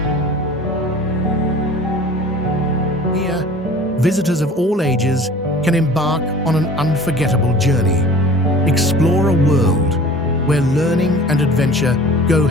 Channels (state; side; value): normal; both; correlation 0.44